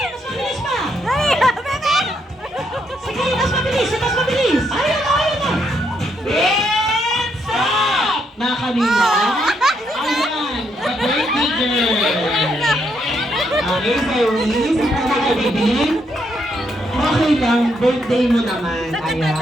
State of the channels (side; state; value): both; normal; correlation 0.76